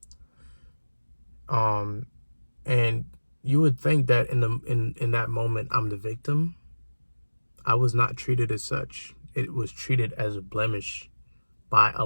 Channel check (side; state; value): both; inverted; correlation -1.00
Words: And you would think that in that moment I'm the victim. I was not treated as such. It was treated as a blemish by a